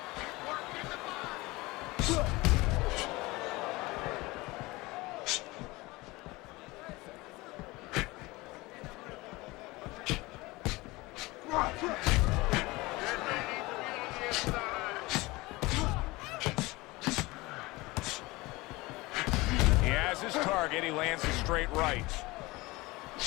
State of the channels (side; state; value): right; quieter; 21.8 dB